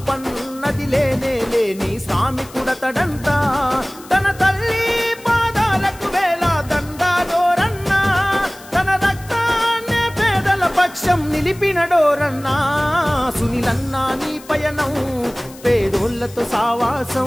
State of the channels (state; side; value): noise; left; hiss, 21 dB below the sound